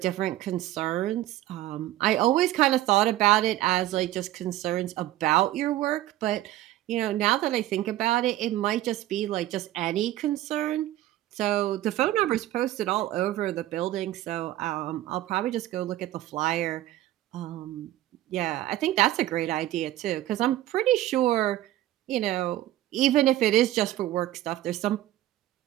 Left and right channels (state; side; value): quieter; left; 14.7 dB